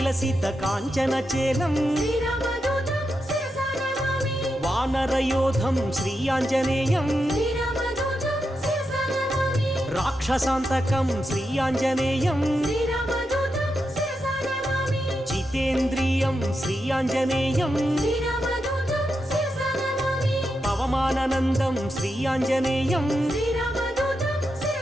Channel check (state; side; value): normal; both; correlation 0.86